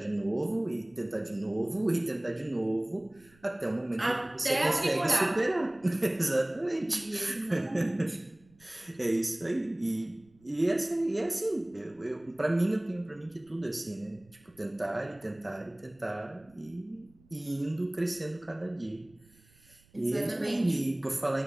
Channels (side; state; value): right; noise; rumble, 30 dB below the sound